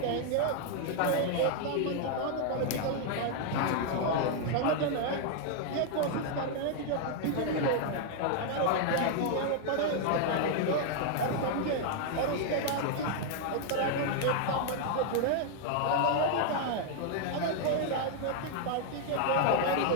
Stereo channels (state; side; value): different; both; correlation 0.00